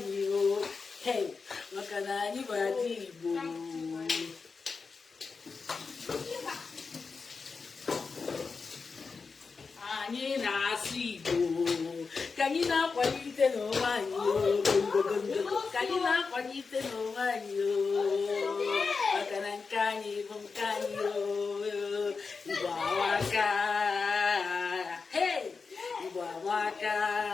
maka na anyị bụ ada Igbo anyị na-asụ Igbo ka anyị na-akwalite n'onwe anyị ka anyị na-akwalite n'onwe anyị maka na nke anyị bụ nke anyị Igbo amaka Igbo amaka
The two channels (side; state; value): right; quieter; 4.8 dB